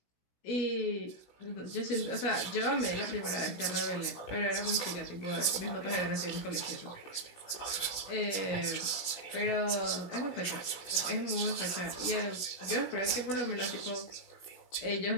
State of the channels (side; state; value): right; late; 16 ms